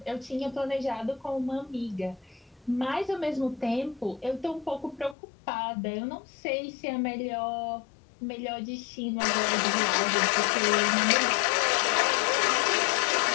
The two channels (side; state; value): right; drops out; at 5.2 s